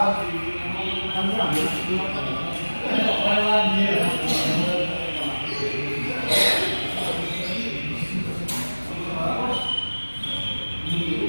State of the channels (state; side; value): inverted; both; correlation -1.00